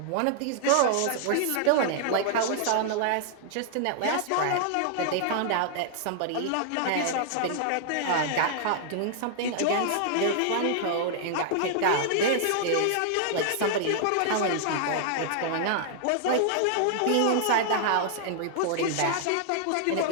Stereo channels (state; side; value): different; both; correlation -0.01